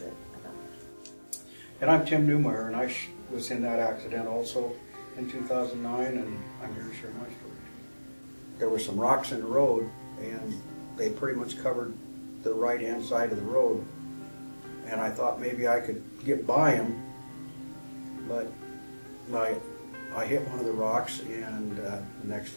about it. And I'm Tim Newmeyer, and I was in that accident also in 2009, and I'm here to share my story. There were some rocks in the road, and they pretty much covered the right-hand side of the road, and I thought maybe I could get by them, but I hit one of the rocks, and the next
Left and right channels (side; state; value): both; inverted; correlation -1.00